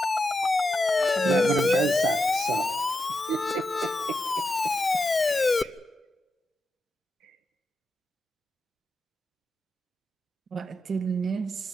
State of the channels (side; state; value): both; normal; correlation 0.87